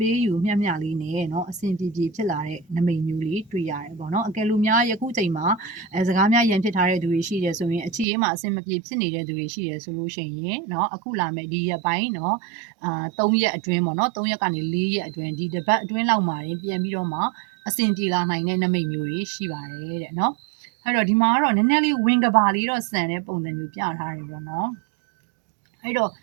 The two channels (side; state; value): left; drops out; at 8.1 s